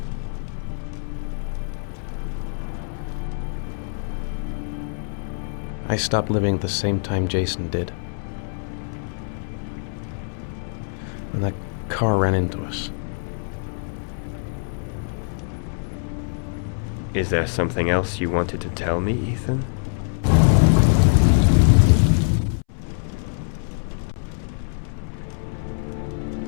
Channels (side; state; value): right; silent; 63 dB below the other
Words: I stopped living at the same time Jason did. When that car ran into us. Is there something else you wanted to tell me, Ethan?